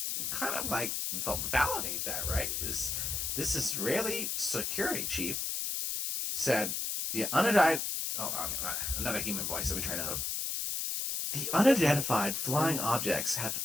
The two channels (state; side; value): noise; left; hiss, 1 dB below the sound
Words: kind of like validate that, right? Is this Israeli security chief said the unidentified... another human voice. Let me try another. The unidentified flying objects have